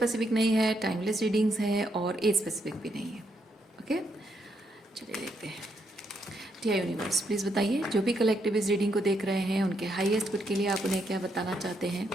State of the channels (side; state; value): both; normal; correlation 0.77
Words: नहीं है, टाइमलेस रीडिंग्स है और एज स्पेसिफिक भी नहीं है। ओके, चलिए देखते हैं। डियर यूनिवर्स, प्लीज़ बताइए, जो भी कलेक्टिव इस रीडिंग को देख रहे हैं उनके हाईएस्ट गुड के लिए आप उन्हें क्या बताना चाहते हैं।